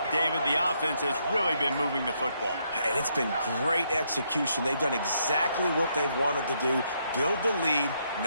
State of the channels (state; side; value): inverted; both; correlation -0.75